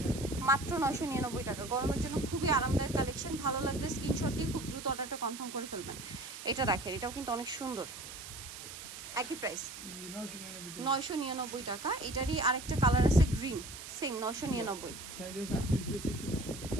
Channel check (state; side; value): noise; right; hiss, 11 dB below the sound